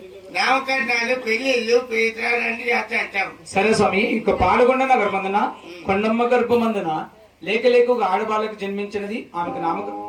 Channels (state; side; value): identical; both; correlation 1.00